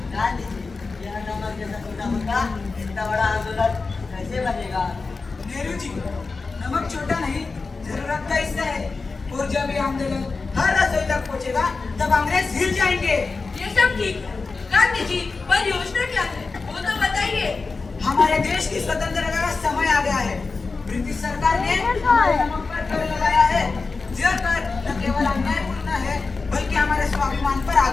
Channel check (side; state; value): right; quieter; 4.2 dB